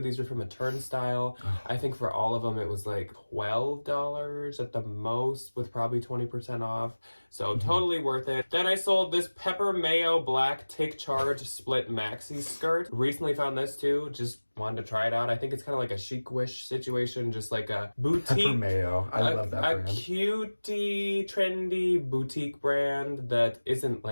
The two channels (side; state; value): both; inverted; correlation -1.00